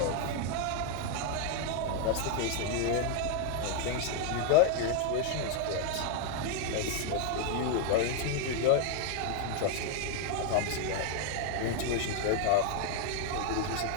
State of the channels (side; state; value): both; different; correlation 0.00